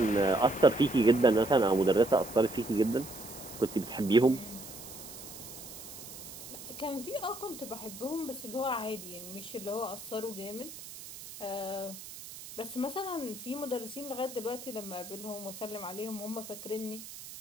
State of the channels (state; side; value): noise; right; hiss, 13 dB below the sound